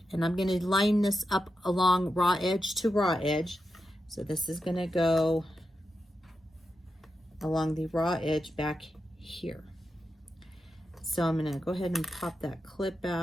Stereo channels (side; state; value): both; normal; correlation 0.88